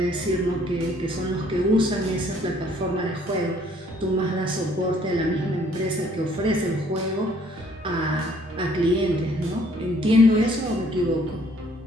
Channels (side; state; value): both; normal; correlation 0.61